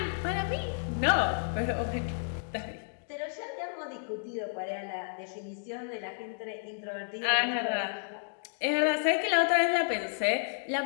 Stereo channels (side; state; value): right; silent; digital silence